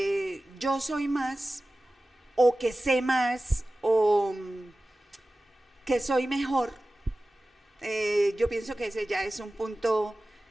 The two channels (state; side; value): normal; both; correlation 0.96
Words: yo soy más, o que sé más, o que soy mejor, yo pienso que ese ya es un punto